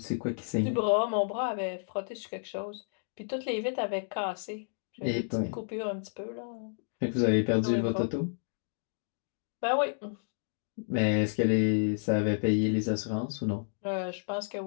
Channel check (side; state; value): right; silent; digital silence